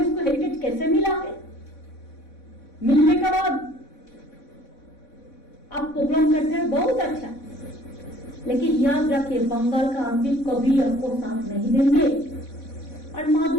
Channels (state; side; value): late; right; 3.6 ms